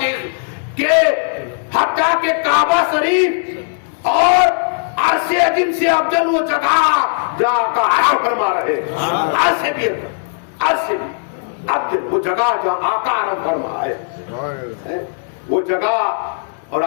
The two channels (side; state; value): right; silent; 66 dB below the other